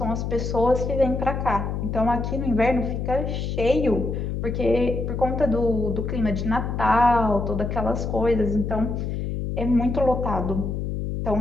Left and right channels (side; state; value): left; noise; hum, 3 dB below the sound